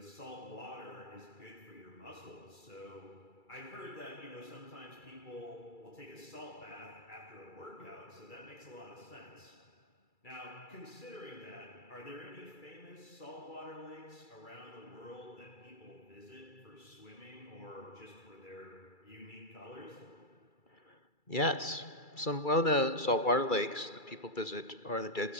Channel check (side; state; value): right; late; 2.3 ms